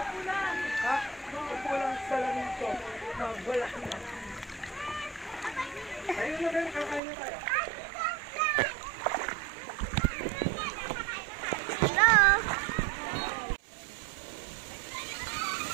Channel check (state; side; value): drops out; left; at 7.0 s